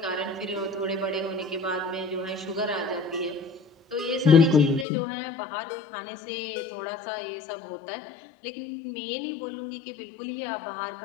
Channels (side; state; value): right; drops out; at 4.9 s